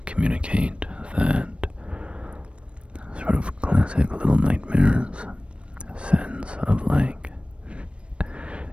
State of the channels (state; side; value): late; left; 0.059 ms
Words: communicate that sort of classic Little Nightmares sense of, like,